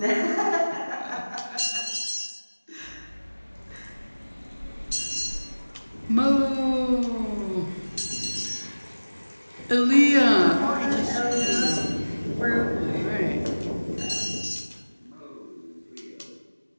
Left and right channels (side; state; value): both; inverted; correlation -1.00